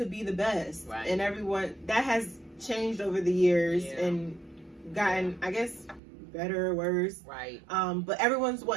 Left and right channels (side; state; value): left; drops out; at 6.0 s